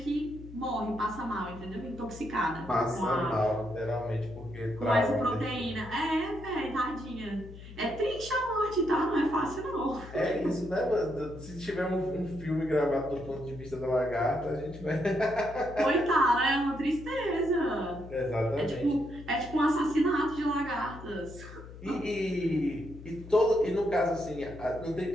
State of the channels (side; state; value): left; noise; hum, 15 dB below the sound